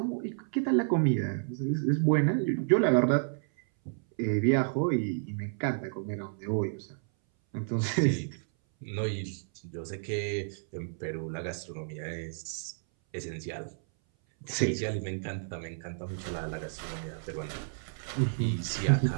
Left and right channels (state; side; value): silent; left; 57 dB below the other